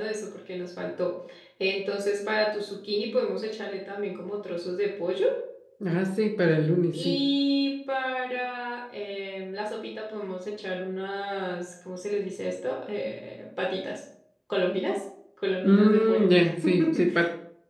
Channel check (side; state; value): both; identical; correlation 1.00